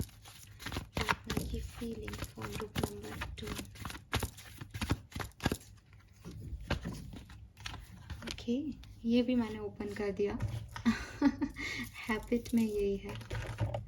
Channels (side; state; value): both; identical; correlation 1.00